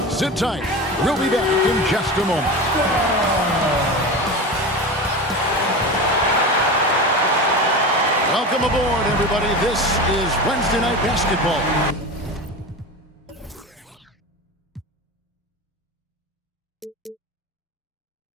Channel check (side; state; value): both; normal; correlation 0.27